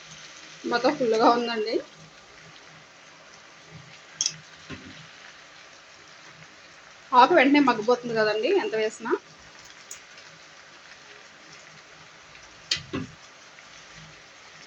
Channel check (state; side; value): identical; both; correlation 1.00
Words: మొత్తం ఫుల్గా ఉందండి. ఆకు వెంటనే మగ్గిపోతుంది కదండి ఎంత వేసినా.